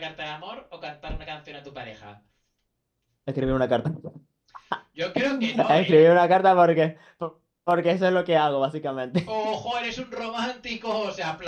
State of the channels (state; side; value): identical; both; correlation 1.00